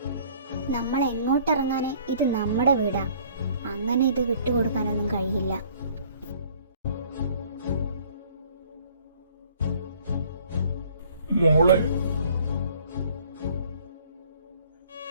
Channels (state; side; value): inverted; both; correlation -0.56